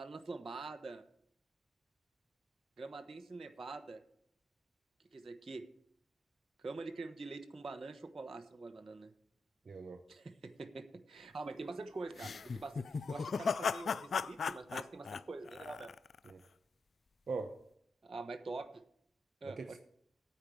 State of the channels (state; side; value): normal; both; correlation 0.85